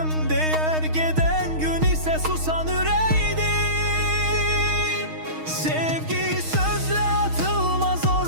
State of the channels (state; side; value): late; left; 6.4 ms